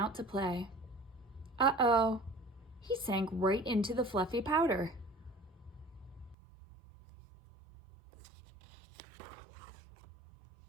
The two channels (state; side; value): drops out; left; at 6.4 s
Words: to play. Uh-oh, he sank right into the fluffy powder.